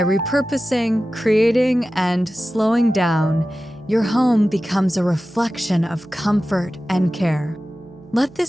repurposing, creating, and slowing down, your home becomes a reflection of comfort and care. Let this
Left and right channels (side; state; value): right; noise; hum, 27 dB below the sound